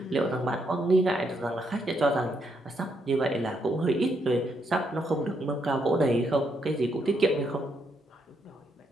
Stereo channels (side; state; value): both; normal; correlation 0.77